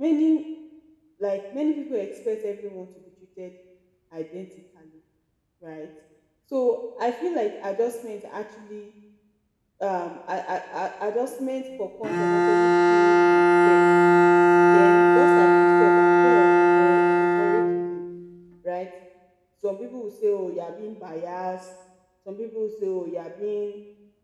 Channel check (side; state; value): both; identical; correlation 1.00